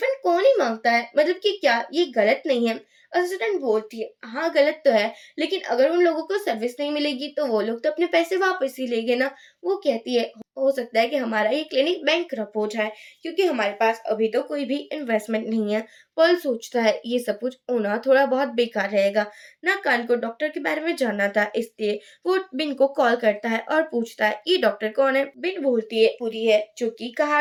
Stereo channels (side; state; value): both; identical; correlation 1.00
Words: कौन ही मांगता है, मतलब कि क्या ये गलत नहीं है। असिस्टेंट बोलती है हाँ गलत तो है, लेकिन अगर उन लोगों को सर्विस नहीं मिलेगी तो वो लोग तो अपने पैसे वापस ही लेंगे ना। वो कहती है हो सकता है कि हमारा ये क्लिनिक बैंकरप्ट हो जाए, क्योंकि हमारे पास अभी तो कोई भी इन्वेस्टमेंट नहीं है। पल सोचता है ये सब कुछ होना थोड़ा बहुत बेकार रहेगा। ना कान को डॉक्टर के बारे में जानना था, इसलिए वो बिन को कॉल करता है और पूछता है ये डॉक्टर कौन है। बिन बोलती है पूरी है, जो कि कहा